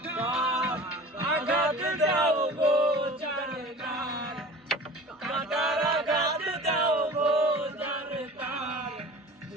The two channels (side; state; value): both; normal; correlation 0.39